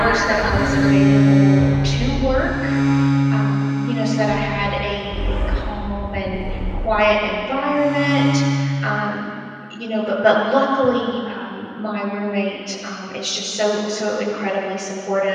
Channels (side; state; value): both; identical; correlation 1.00